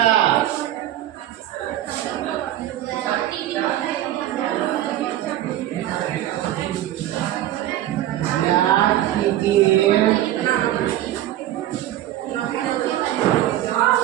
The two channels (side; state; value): left; quieter; 13.2 dB